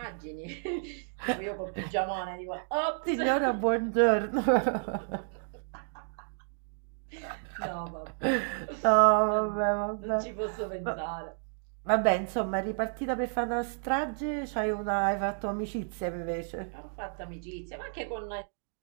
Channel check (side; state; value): left; silent; digital silence